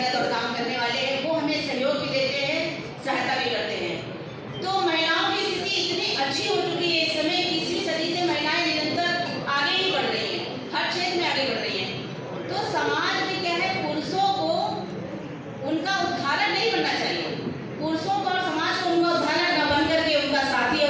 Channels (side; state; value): both; identical; correlation 1.00